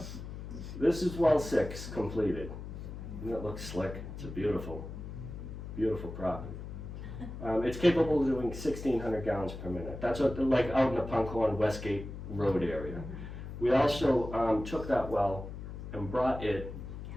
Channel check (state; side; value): noise; left; hum, 9 dB below the sound